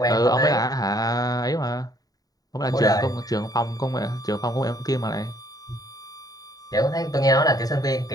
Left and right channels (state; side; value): late; right; 0.18 ms